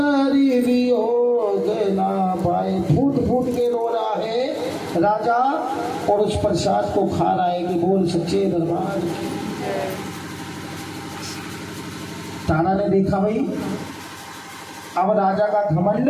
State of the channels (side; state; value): both; identical; correlation 1.00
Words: वियोग ना पाए। फूट फूट के रो रहा है राजा और उस प्रसाद को खा रहा है कि बोल सच्चे दरबार की। तारा ने देखा भाई अब राजा का घमंड